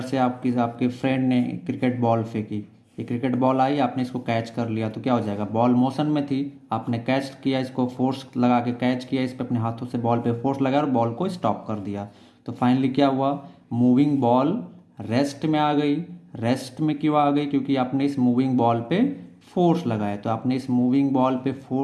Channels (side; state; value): both; identical; correlation 1.00